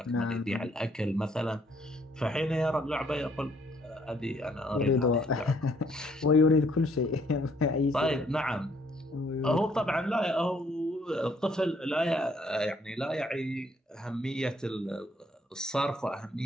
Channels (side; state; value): both; normal; correlation 0.66